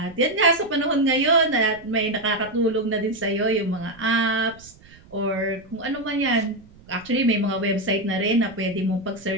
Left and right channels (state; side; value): noise; right; rumble, 24 dB below the sound